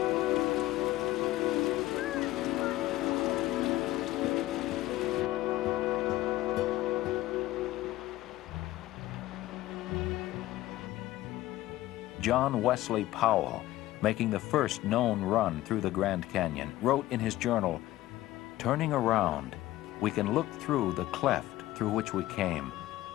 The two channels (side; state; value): right; quieter; 16.1 dB